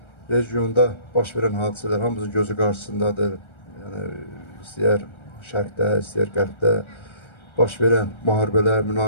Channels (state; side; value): late; right; 1.3 ms